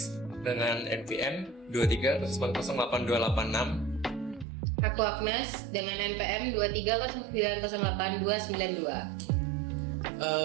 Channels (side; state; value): left; drops out; at 4.5 s